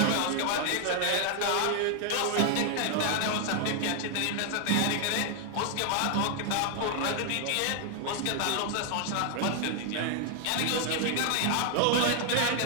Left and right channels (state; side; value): different; both; correlation 0.00